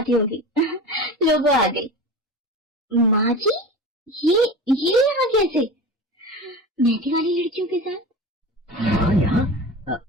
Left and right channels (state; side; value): normal; both; correlation 0.32